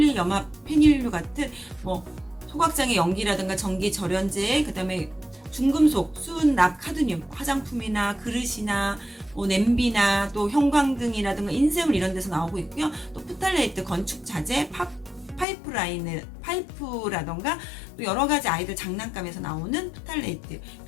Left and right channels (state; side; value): drops out; right; at 15.5 s